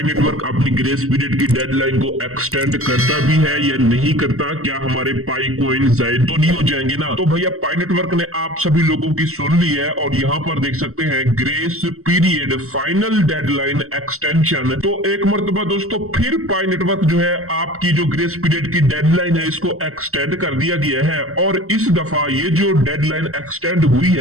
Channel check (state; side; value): late; left; 0.63 ms